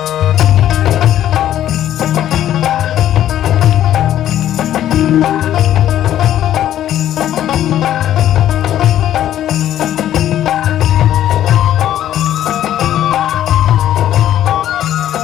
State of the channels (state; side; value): quieter; right; 11.8 dB